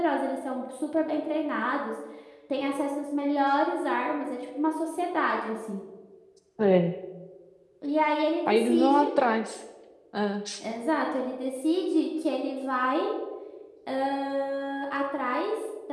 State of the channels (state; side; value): identical; both; correlation 1.00